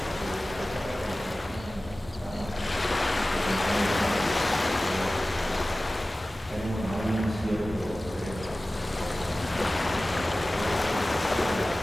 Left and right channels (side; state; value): both; normal; correlation 0.97